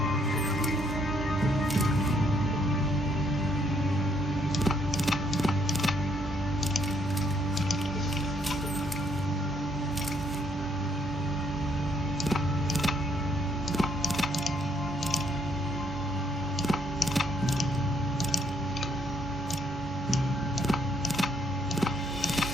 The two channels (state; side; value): normal; both; correlation 0.69